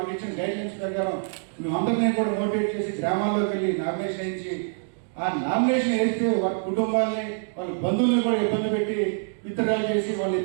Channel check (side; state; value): left; silent; digital silence